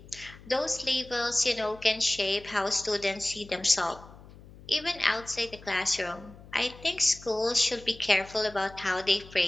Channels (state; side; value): noise; left; hum, 20 dB below the sound